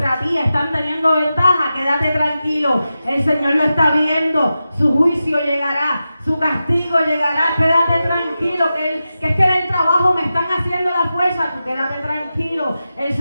ti, están teniendo ventaja. Quédate tranquilo, el Señor lo está viendo. Su juicio llegará, su castigo llegará. Quédate tranquilo, que es que en el trabajo me están haciendo la fuerza. Tú quédate tranquilo, el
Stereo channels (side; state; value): both; inverted; correlation -0.92